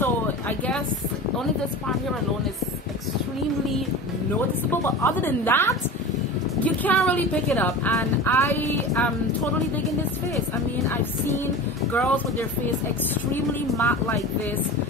I guess only this part here alone is extremely noticeable. But other than that, you can't really pick it up, and I am totally digging this face. I mean, I've seen girls with their face extremely matte like this,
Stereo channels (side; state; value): both; normal; correlation 0.32